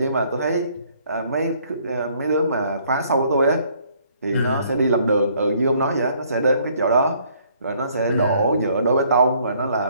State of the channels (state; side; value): inverted; both; correlation -0.64